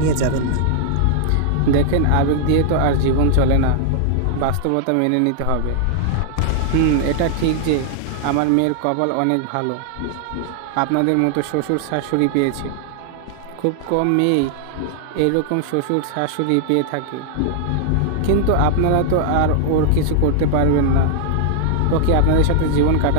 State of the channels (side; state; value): both; different; correlation 0.00